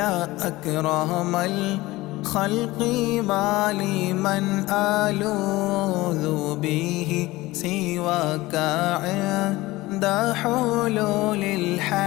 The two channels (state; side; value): quieter; right; 19.3 dB